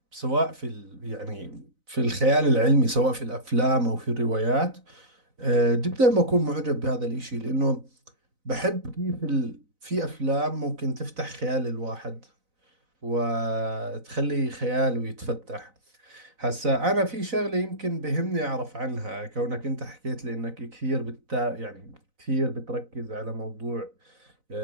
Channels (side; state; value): left; late; 4.0 ms